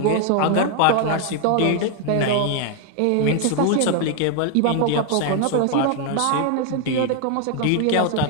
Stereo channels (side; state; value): both; different; correlation 0.00